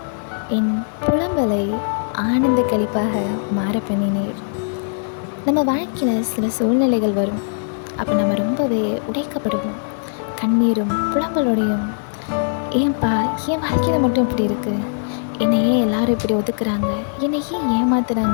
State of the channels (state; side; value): silent; right; 65 dB below the other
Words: என் புலம்பலை ஆனந்த களிப்பாக மாற பண்ணினீர். நம்ம வாழ்க்கையில் சில சூழ்நிலைகள் வரும். அப்போ நம்ம ரொம்பவே உடைக்கப்படுவோம். கண்ணீரும் புலம்பலோடையும், ஏன்பா என் வாழ்க்கையில் மட்டும் இப்படி இருக்குது, என்னை ஏன் எல்லாரும் இப்படி ஒதுக்குறாங்க, என்னை ஏன்